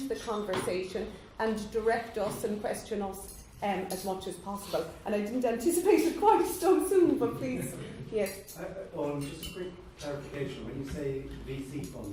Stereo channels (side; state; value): both; identical; correlation 1.00